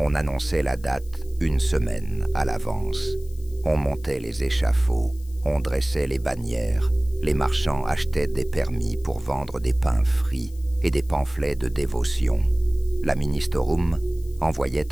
annonçait la date 1 semaine à l'avance. On montait les échafauds, on dressait les bannières. Les marchands achetaient des permis pour vendre des pains frits et des pamphlets de dévotion. La ministerum envoyait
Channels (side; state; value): left; noise; hiss, 25 dB below the sound